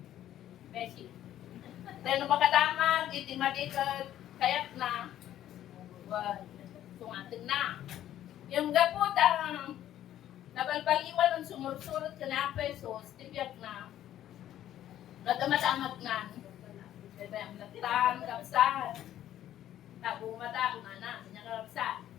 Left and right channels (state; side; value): quieter; right; 12.1 dB